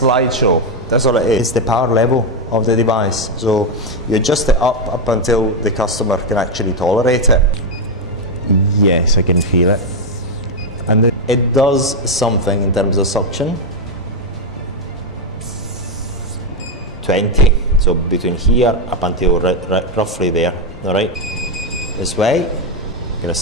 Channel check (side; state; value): both; normal; correlation 0.04